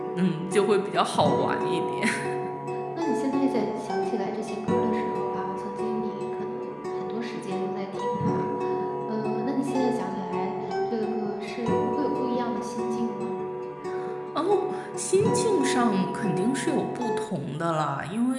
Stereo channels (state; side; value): identical; both; correlation 1.00